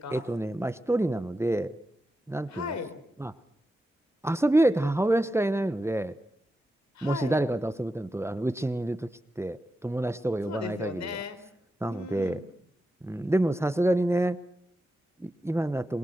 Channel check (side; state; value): both; normal; correlation 0.90